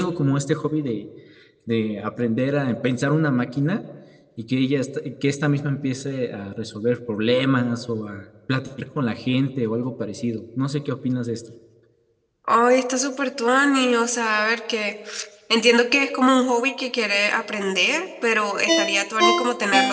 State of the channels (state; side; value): identical; both; correlation 1.00